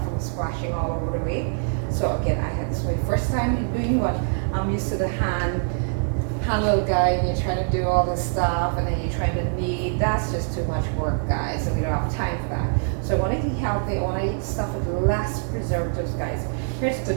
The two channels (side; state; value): left; silent; digital silence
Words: from splashing all over the way. So again, this is my first time doing what I'm used to the hand little guy, and you're trying to do all this stuff, and then you're trying to knead. That's just too much work, guys, and we don't have time for that. So I want to eat healthy. I want to eat stuff with less preservatives, guys. Here's the